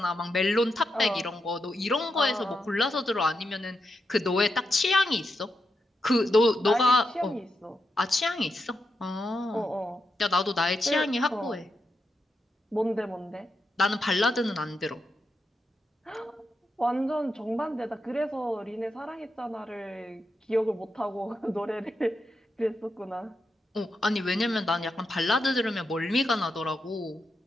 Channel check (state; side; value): normal; both; correlation 0.85